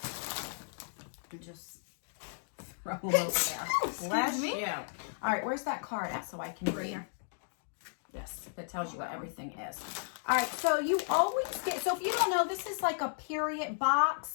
And just throw them over there. Bless you. All right, where's that card at so I can read? Here. Yes, that tells you what everything is. All right, so you always get, so if you don't know, this is like a period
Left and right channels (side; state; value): right; silent; digital silence